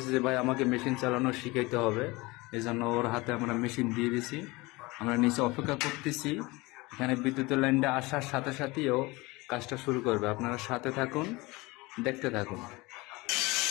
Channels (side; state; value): right; quieter; 23.0 dB